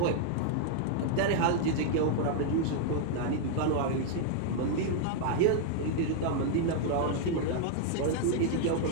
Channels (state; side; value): different; both; correlation 0.00